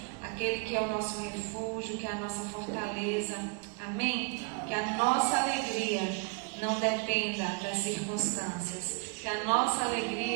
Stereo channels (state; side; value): quieter; left; 30.6 dB